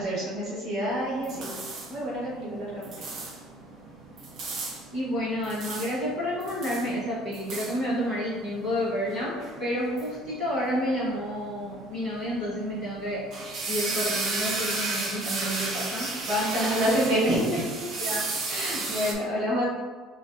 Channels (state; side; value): normal; both; correlation 0.54